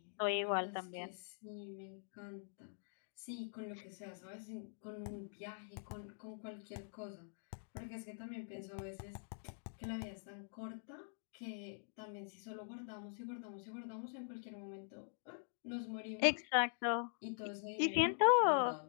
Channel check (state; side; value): silent; right; digital silence